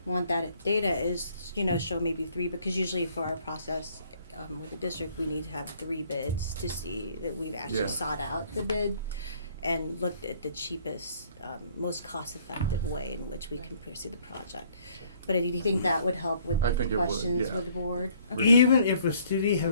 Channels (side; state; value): both; inverted; correlation -0.61